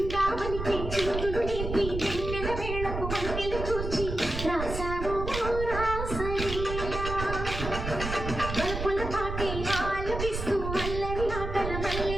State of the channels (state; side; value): noise; right; rumble, 5 dB below the sound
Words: చిందులు నేర్పి వెన్నెల వేళకు వన్నెలు కూర్చి రాసావో రాసలీలా. బలపుల పాటే ఆలపిస్తూ అల్లరి ఆటల